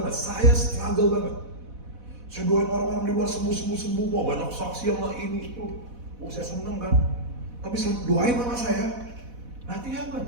saya struggle banget. Saya doain orang-orang di luar sembuh, wah banyak saksian lah ini itu. Saya seneng kan. Tapi saya doain mama saya, nothing happen.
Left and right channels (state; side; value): late; left; 4.1 ms